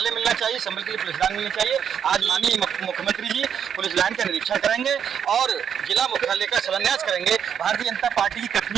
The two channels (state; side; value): quieter; left; 8.1 dB